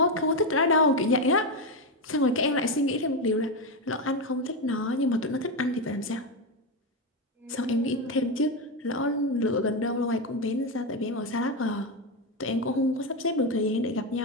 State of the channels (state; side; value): normal; both; correlation 0.10